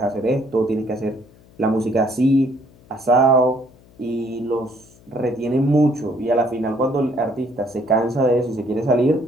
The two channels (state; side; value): noise; left; hum, 27 dB below the sound